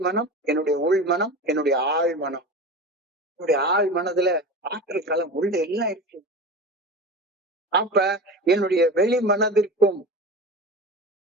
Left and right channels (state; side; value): normal; both; correlation 0.30